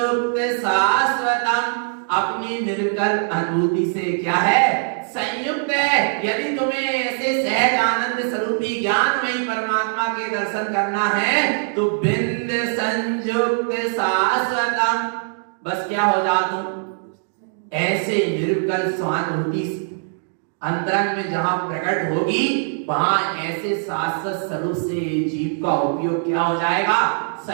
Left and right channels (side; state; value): left; silent; digital silence